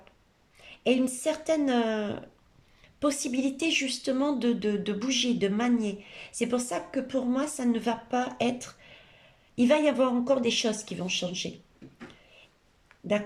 et une certaine possibilité justement de bouger, de manier. C'est pour ça que pour moi, ça ne va pas être... Il va y avoir encore des choses qui vont changer.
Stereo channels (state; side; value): identical; both; correlation 1.00